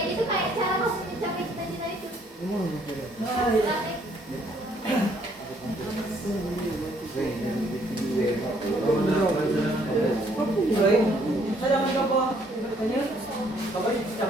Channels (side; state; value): both; normal; correlation 0.65